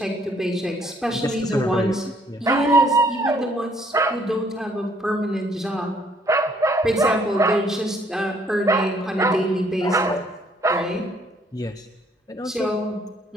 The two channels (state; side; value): normal; both; correlation 0.64